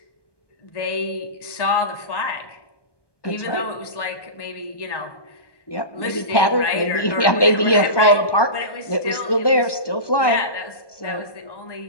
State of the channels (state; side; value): late; right; 1.2 ms